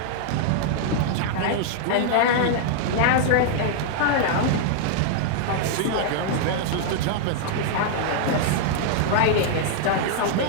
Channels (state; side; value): different; both; correlation -0.01